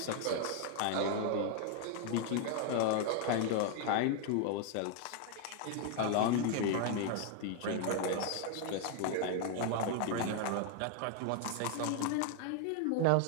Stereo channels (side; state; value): both; different; correlation 0.00